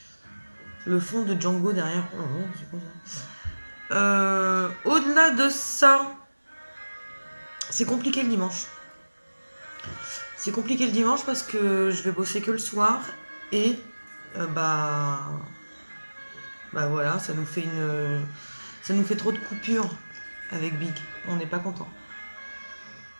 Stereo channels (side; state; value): both; inverted; correlation -1.00